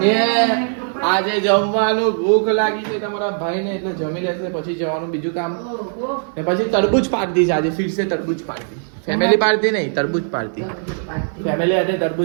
આજે જમવાનું ભૂખ લાગી છે તમારા ભાઈને, એટલે જમી લેશે પછી જવાનું બીજું કામ. ને પછી તરબૂચ પાર્ટી છે આજે, ફિર સે તરબૂચ પાર્ટી. ફેમિલી પાર્ટી નહીં, તરબૂચ પાર્ટી. ફેમિલી સાથે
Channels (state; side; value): silent; left; digital silence